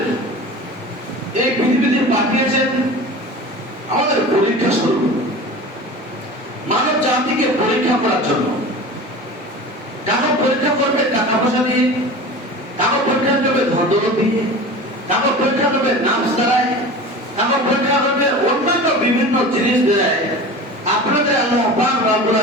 এই পৃথিবীতে পাঠিয়েছেন আমাদের পরীক্ষা স্বরূপ, মানব জাতিকে পরীক্ষা করার জন্য। কাকে পরীক্ষা করবে? টাকা পয়সা দিয়ে, কাকে পরীক্ষা করবে ধন দৌলত দিয়ে, কাকে পরীক্ষা করবে নাফস দ্বারায়, কাকে পরীক্ষা করবে অন্যান্য বিভিন্ন জিনিস দ্বারায়। আপনাদের আল্লাহ পাক রব্বুল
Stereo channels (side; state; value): both; normal; correlation 0.35